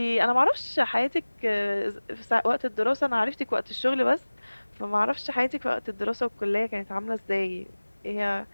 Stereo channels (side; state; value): both; inverted; correlation -1.00